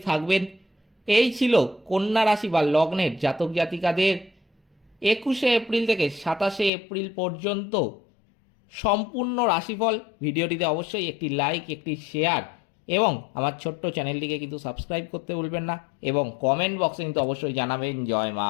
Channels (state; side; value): drops out; right; at 6.7 s